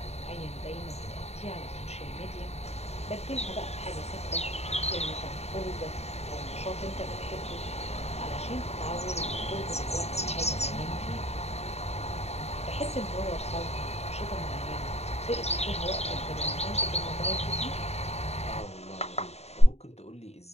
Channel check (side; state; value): right; late; 0.31 ms